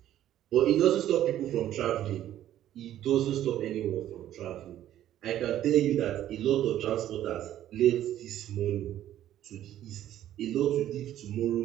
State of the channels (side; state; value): left; quieter; 12.2 dB